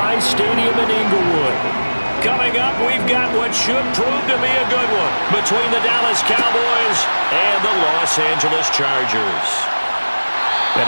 Stadium in Inglewood. Coming up, we've got what should prove to be a good one between the Dallas Cowboys and the Los Angeles Chargers.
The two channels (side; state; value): both; inverted; correlation -1.00